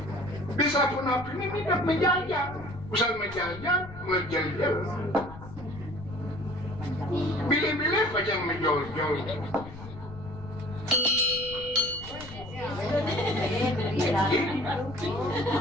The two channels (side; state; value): left; noise; rumble, 15 dB below the sound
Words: Bisa pun api ini midap menjajah. Usan menjajah menjajah. Bilih-bilih macam menjol-jol.